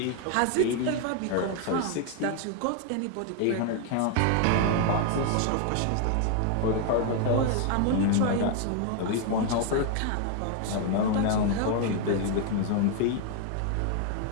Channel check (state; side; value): different; both; correlation 0.00